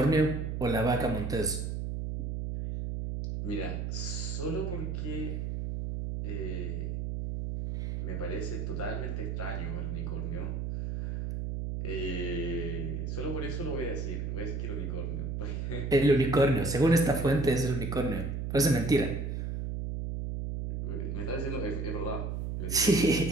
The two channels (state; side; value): noise; right; hum, 3 dB below the sound